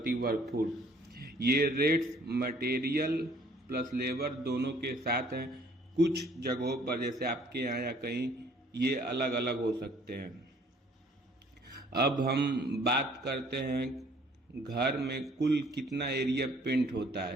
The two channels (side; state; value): both; normal; correlation 0.59